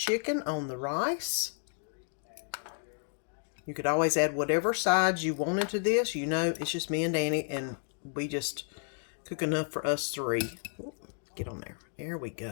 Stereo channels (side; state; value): right; silent; 56 dB below the other